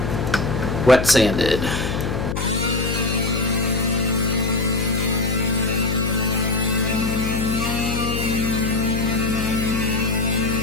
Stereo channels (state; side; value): noise; left; hum, 2 dB below the sound